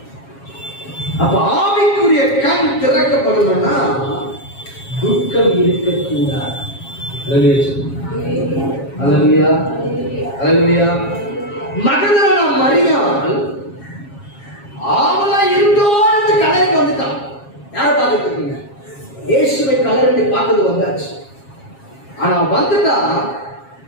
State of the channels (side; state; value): right; late; 7.4 ms